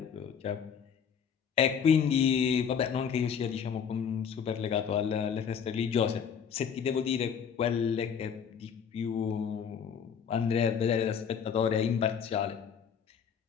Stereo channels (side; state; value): right; quieter; 7.3 dB